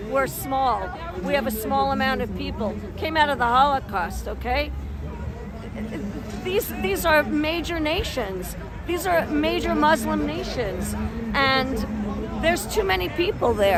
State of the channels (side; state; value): both; identical; correlation 1.00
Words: We're small. We have a small amount of people. Came out of the Holocaust, okay? These are major nations. These are major Muslim nations, and there's too many people